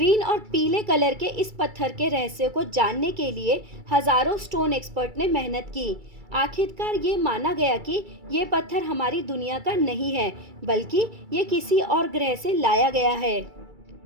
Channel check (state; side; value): late; left; 2.3 ms